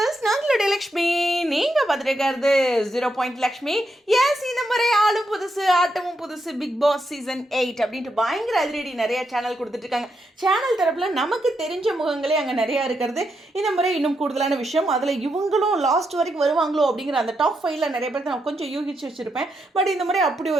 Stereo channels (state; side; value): normal; both; correlation 0.82